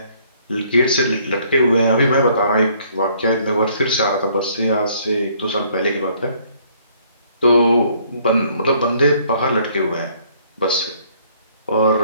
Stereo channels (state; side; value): inverted; both; correlation -0.63